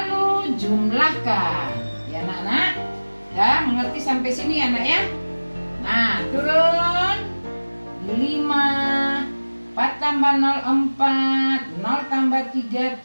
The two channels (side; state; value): both; inverted; correlation -1.00